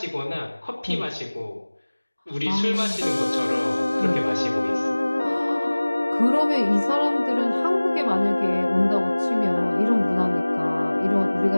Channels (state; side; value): inverted; both; correlation -1.00